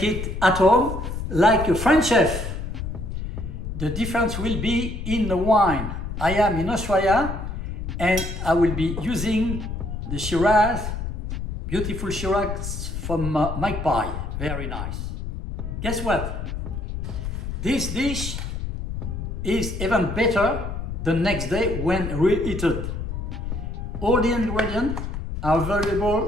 it at home like a French chef. The difference will be in the wine. I am in Australia and I will be using the Shiraz, beautiful Shiraz from Magpie, very nice. Guess what? This dish is even better the next day when reheated. All the ingredients are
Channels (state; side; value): noise; left; rumble, 5 dB below the sound